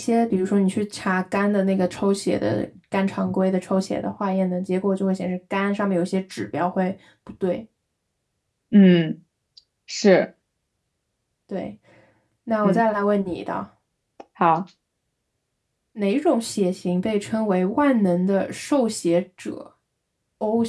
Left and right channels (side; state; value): both; identical; correlation 1.00